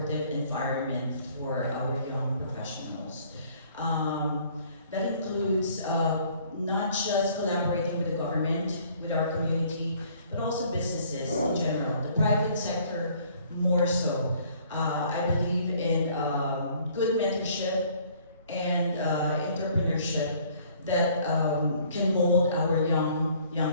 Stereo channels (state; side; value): inverted; both; correlation -0.58